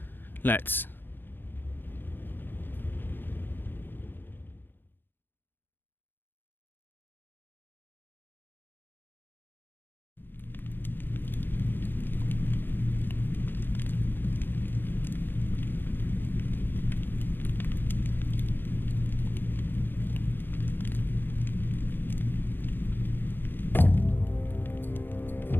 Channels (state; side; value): late; right; 0.097 ms